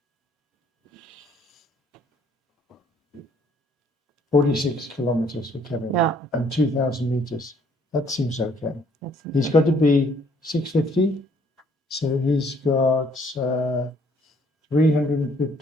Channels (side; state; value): both; normal; correlation 0.63